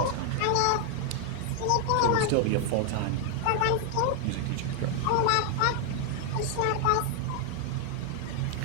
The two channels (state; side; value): different; both; correlation 0.00